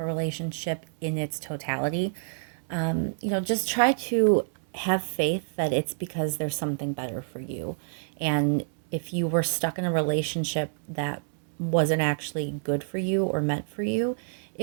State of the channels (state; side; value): silent; left; digital silence